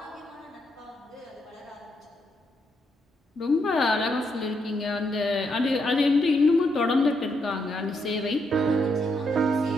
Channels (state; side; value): normal; both; correlation 0.78